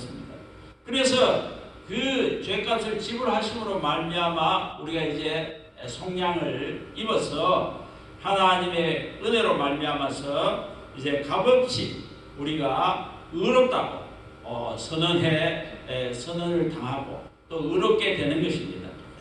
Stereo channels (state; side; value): identical; both; correlation 1.00